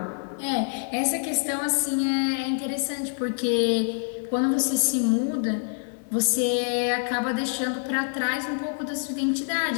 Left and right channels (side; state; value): right; silent; 61 dB below the other